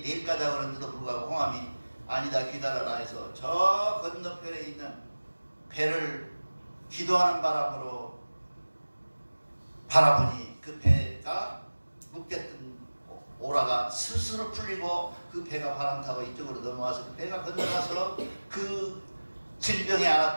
내일 가자고 그러는데도 불구하고 홍암이 아니다 기다려라 해서 저 건너편에 있는 배를 기도하는 바람으로 바라보니 그 배가 묶였던 오라가 스스로 풀리고 그 배가 바람 타고 이쪽으로 넘어와서 그 배가 건너가서 그 질병에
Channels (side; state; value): both; inverted; correlation -1.00